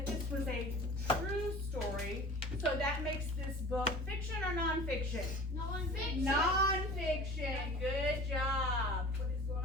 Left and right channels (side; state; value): both; normal; correlation 0.41